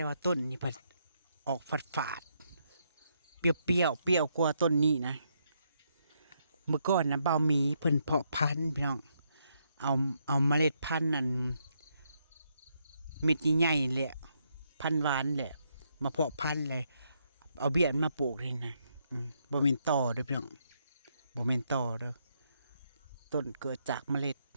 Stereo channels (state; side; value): inverted; both; correlation -0.77